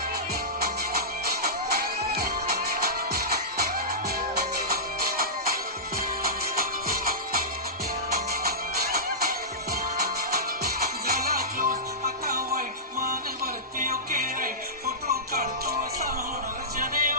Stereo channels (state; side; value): normal; both; correlation -0.17